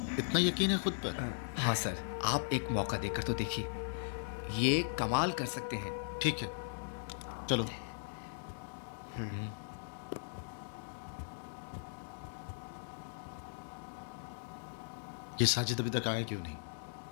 इतना यकीन है खुद पर? हाँ सर, आप एक मौका देकर तो देखिए, ये कमाल कर सकते हैं। ठीक है, चलो। ये साजिद अभी तक आया क्यों नहीं?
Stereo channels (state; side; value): silent; right; digital silence